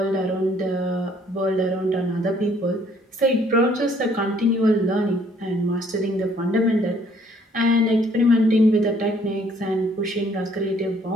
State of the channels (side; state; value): both; normal; correlation 0.62